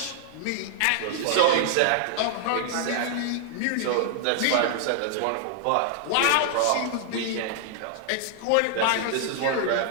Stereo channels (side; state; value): both; different; correlation -0.01